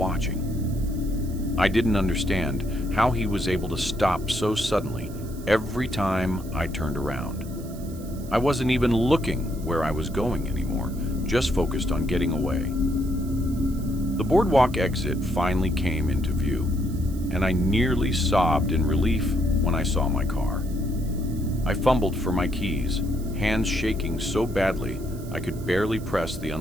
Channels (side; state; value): right; noise; hiss, 20 dB below the sound